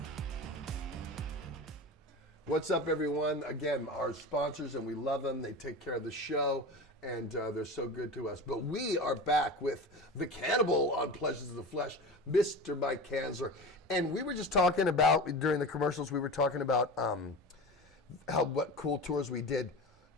What's up, everyone? Again, our sponsors, and we love them. They take care of the show, and they're so good to us. But we are back with the Cannibal on Pleasures of the Flesh, Mr. Mike Kanzler. And we were just talking about, during the commercials, we were talking about what cool tours we did.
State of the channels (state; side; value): normal; both; correlation 0.30